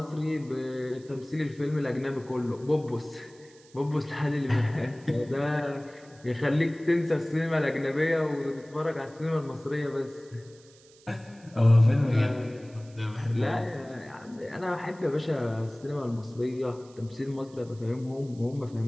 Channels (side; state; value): right; noise; hiss, 26 dB below the sound